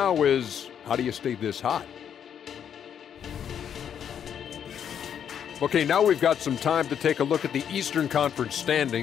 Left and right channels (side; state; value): right; quieter; 8.6 dB